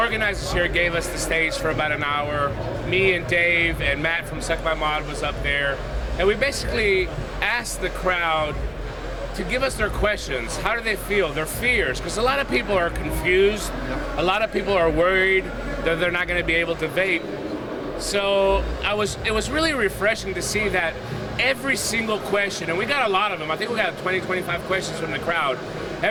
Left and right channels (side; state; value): both; identical; correlation 1.00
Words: here gave us the stage for about an hour. Me and Dave and Matt from Suck My Mod was up there. And we basically asked the crowd to give us their questions. How do they feel? Their fears. Because a lot of people are confused. A lot of people are worried that they're not going to be able to vape. So it was really refreshing to see that every single question, and we got a lot of them. I think we got 20, 25 questions from the crowd.